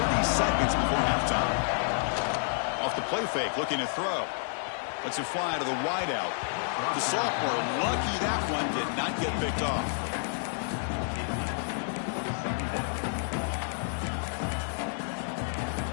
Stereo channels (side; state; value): right; silent; digital silence